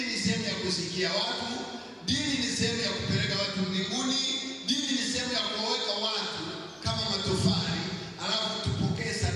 ni sehemu ya kusikia watu, dini ni sehemu ya kupeleka watu mbinguni, dini ni sehemu ya kuweka watu kama matofali, alafu tupokee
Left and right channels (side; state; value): both; identical; correlation 1.00